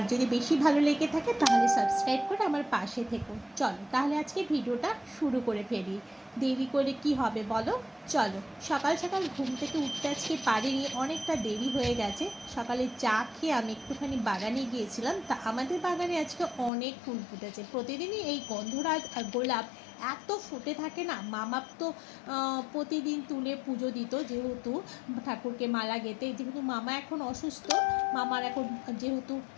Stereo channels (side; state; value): right; drops out; at 16.7 s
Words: যদি বেশি ভালো লেগে থাকে তাহলে সাবস্ক্রাইব করে আমার পাশে থেকো। চলো তাহলে আজকে ভিডিওটা শুরু করে ফেলি। দেরি করে কি হবে বলো, চলো। সকাল সকাল ঘুম থেকে উঠতে আজকে পারিনি, অনেকটা দেরি হয়ে গেছে। সকালে চা খেয়ে আমি একটুখানি বাগানে গিয়েছিলাম। তা আমাদের বাগানে আজকে অনেক ফুল ফুটেছে। প্রতিদিনই এই গন্ধরাজ আর গোলাপ এত ফুটে থাকে না। মামা তো প্রতিদিন তুলে পুজো দিত, যেহেতু ঠাকুরকে মালা গেঁথে। যেহেতু মামা এখন অসুস্থ, মামার এখন যেহেতু